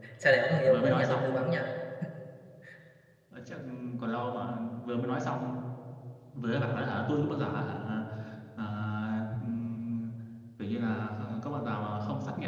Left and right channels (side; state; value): both; identical; correlation 1.00